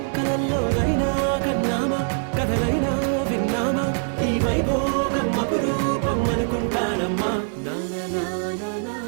కలల్లోనైనా కన్నామా కథలైనా విన్నామా, ఈ వైభోగం అపురూపం అనుకుంటానమ్మా.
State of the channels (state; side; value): silent; left; 63 dB below the other